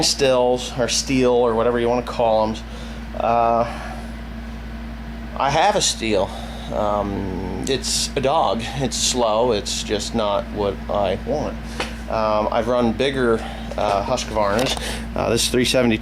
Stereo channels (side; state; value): both; identical; correlation 1.00